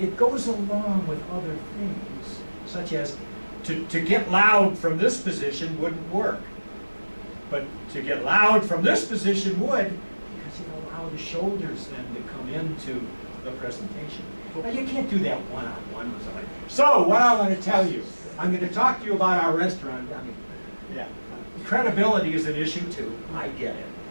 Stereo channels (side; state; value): both; inverted; correlation -1.00